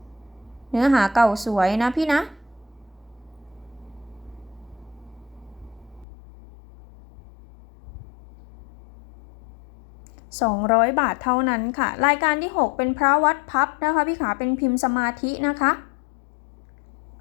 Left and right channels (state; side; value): drops out; right; at 6.1 s